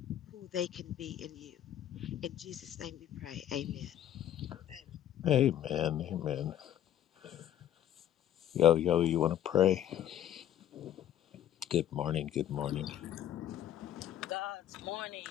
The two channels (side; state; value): right; quieter; 11.3 dB